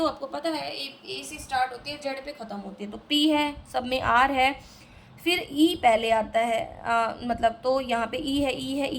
आपको पता है ए से स्टार्ट होती है, जेड पे ख़त्म होती है, तो पी है, सब में आर है, फिर ई पहले आता है, मतलब तो यहाँ पे ई है, ई है,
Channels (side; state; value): both; identical; correlation 1.00